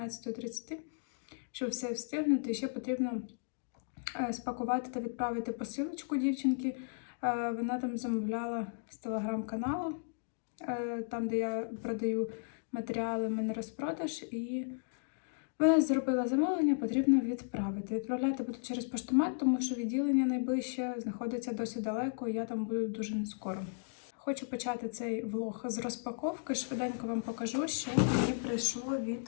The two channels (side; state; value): right; silent; digital silence